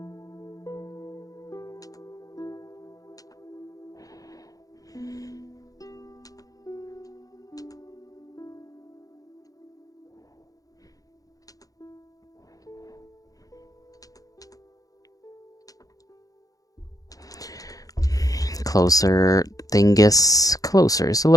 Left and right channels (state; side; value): late; right; 0.17 ms